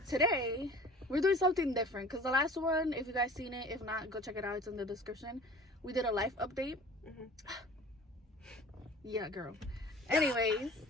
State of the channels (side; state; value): both; normal; correlation 0.44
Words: today we're doing something different because the last one, if you guys seen it, if not, go check it out. It's in the description. We did a life update. Yeah, girl. Anyways,